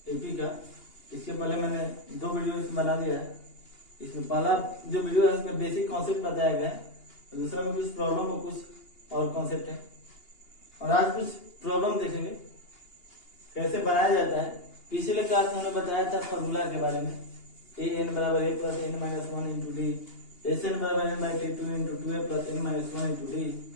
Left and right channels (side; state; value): right; late; 2.8 ms